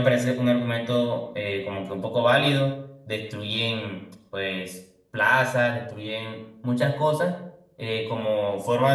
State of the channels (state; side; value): identical; both; correlation 1.00